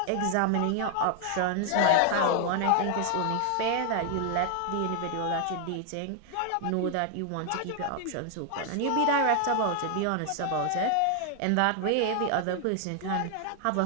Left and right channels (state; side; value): different; both; correlation 0.00